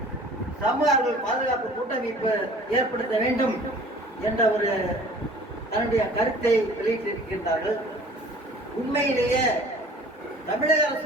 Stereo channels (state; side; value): normal; both; correlation 0.48